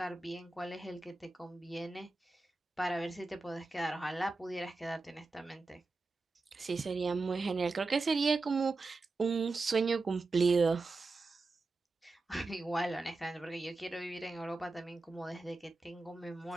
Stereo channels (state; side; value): quieter; left; 3.6 dB